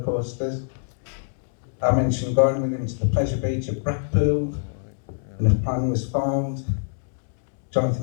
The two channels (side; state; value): right; silent; digital silence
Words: coasters. I mentioned going with him to the pleasure beach at Blackpool, and a plan was formed.